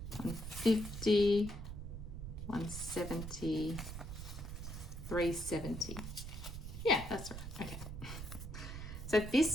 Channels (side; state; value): right; noise; rumble, 8 dB below the sound